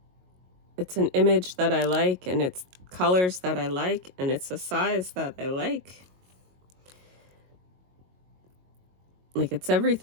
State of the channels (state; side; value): late; left; 22 ms